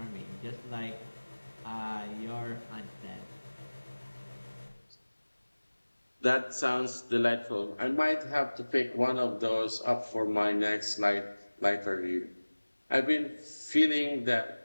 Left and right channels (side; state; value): both; inverted; correlation -1.00